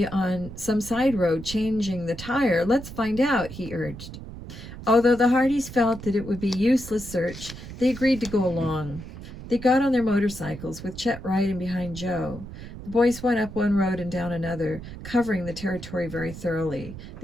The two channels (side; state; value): right; noise; rumble, 12 dB below the sound